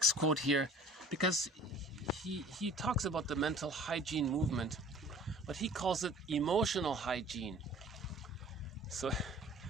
quote here because he talks about the mental hygiene movement, but he calls it emotional hygiene. So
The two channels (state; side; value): normal; both; correlation 0.48